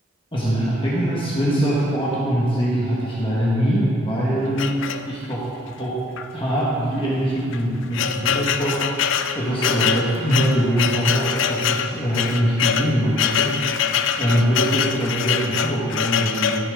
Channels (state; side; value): normal; both; correlation 0.56